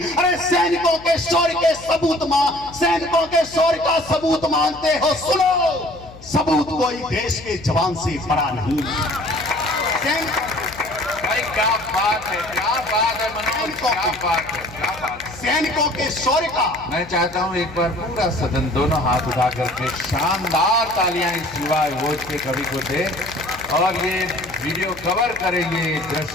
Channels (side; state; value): left; noise; hum, 19 dB below the sound